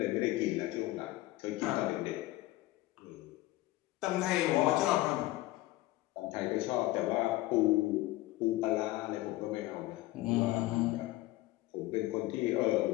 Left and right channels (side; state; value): right; quieter; 18.1 dB